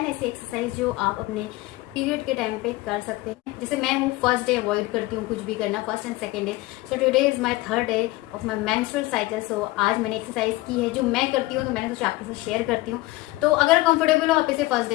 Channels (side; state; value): right; quieter; 19.9 dB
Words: ऐसे एक्सरसाइज जो आप अपने पीरियड के टाइम पे कर सकते हैं। जैसे मैं हूँ फर्स्ट डे अवॉइड करती हूँ कुछ भी करना, first and second day. So today is my third day of my menstrual cycle. So आज मैंने एक्सरसाइज की है जो मैं करती हूँ, तो मैंने सोचा आपके साथ शेयर करती हूँ। तो अगर कंफर्टेबल हो आप इसे फर्स्ट